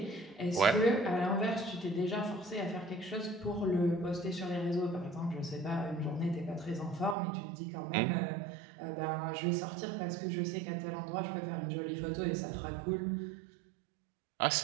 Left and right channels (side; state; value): left; drops out; at 7.2 s